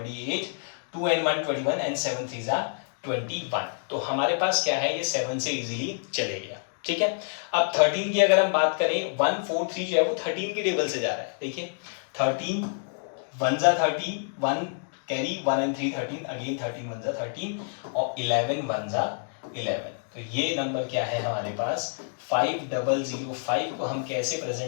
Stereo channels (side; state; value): right; silent; digital silence